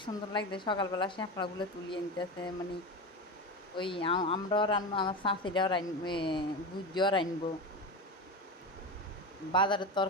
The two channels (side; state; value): both; normal; correlation 0.22